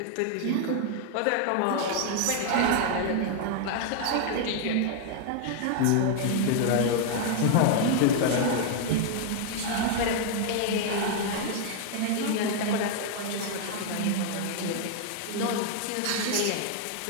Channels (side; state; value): both; different; correlation 0.00